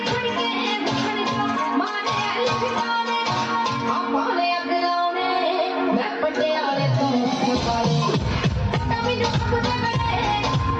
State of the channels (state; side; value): identical; both; correlation 1.00